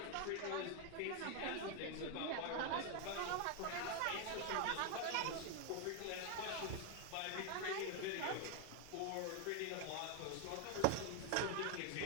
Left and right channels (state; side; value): different; both; correlation 0.01